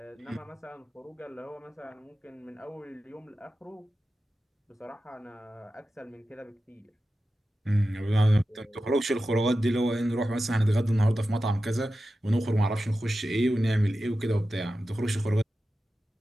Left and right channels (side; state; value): both; normal; correlation 0.93